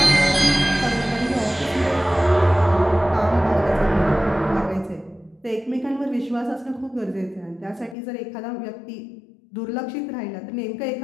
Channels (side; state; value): right; drops out; at 8.0 s